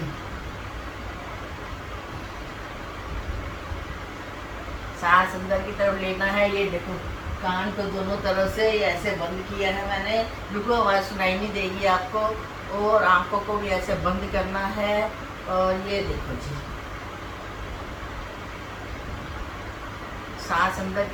सांस अंदर की तरफ लेना है। ये देखो कान को दोनों तरफ से ऐसे बंद किया है मैंने, रुको आवाज़ सुनाई नहीं देगी आपको। और आंखों को भी ऐसे बंद करना है। और ये देखो जी, सांस अंदर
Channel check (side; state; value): both; identical; correlation 1.00